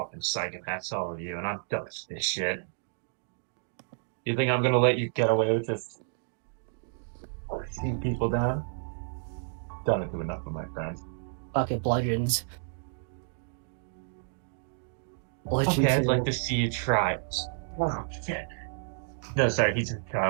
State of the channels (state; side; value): silent; left; digital silence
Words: psychopaths, all of you, and I'm done with this shit. You think I'm gonna let you get away with just pushing people down? Done it to enough of my friends. bucket bludgeons. Bludgeon Okay, I'd 2. like to see you try. Oh, shit. No, sorry, he's a